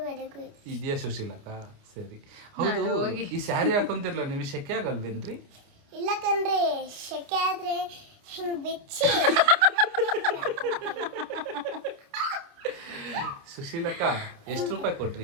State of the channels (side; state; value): left; late; 29 ms